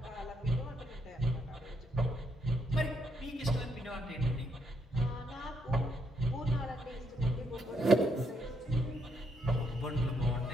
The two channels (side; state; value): both; normal; correlation 0.76